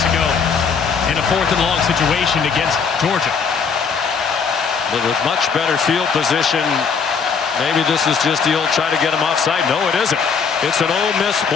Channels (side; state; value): right; quieter; 5.9 dB